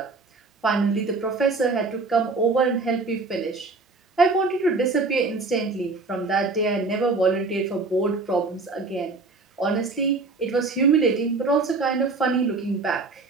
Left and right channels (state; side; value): quieter; left; 3.8 dB